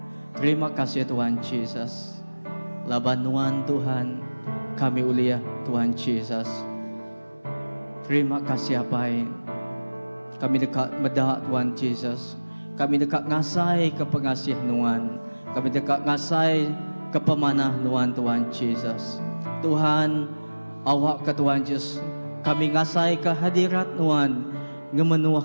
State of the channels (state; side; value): inverted; both; correlation -1.00